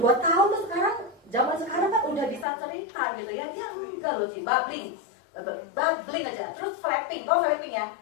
tahun tuh zaman sekarang kan udah bisa cerita gitu ya. Dia enggak loh sih, babbling aja. Terus flapping, tau flapping ya?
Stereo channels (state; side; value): drops out; right; at 2.5 s